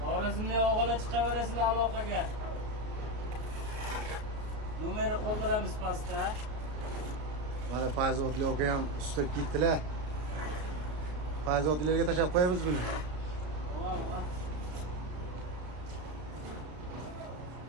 Xorazmlik o'g'illar chiqaverasizlar aloqaga. Nomeri qoldiramiz pastda. Mana Fayzodli aka ham ustib ketdilar. Fayzodlilarga tashab qo'yamiz buni.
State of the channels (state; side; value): late; left; 33 ms